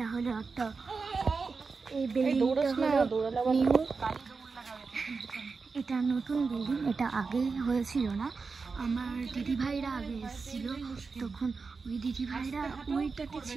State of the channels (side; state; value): left; quieter; 4.6 dB